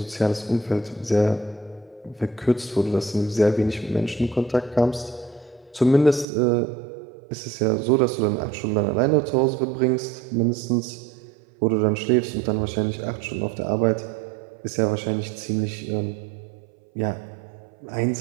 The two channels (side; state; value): left; drops out; at 6.2 s